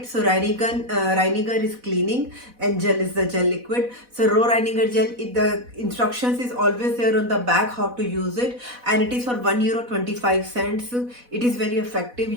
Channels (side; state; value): left; late; 4.1 ms